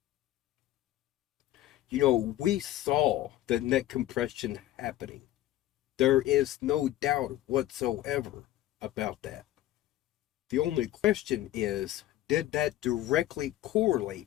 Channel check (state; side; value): quieter; right; 14.4 dB